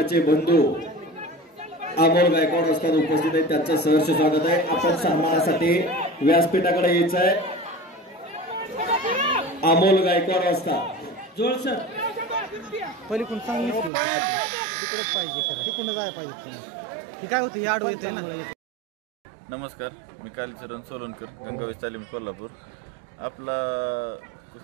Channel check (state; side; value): drops out; left; at 13.9 s